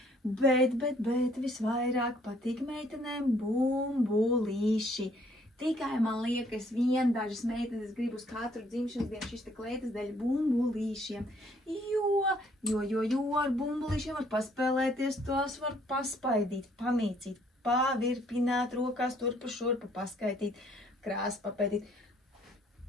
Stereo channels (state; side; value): normal; both; correlation 0.64